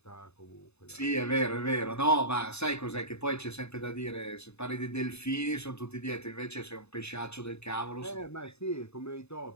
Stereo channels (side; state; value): right; late; 0.80 ms